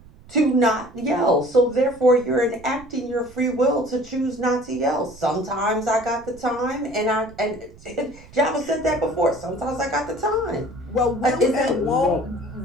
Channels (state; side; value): noise; right; rumble, 22 dB below the sound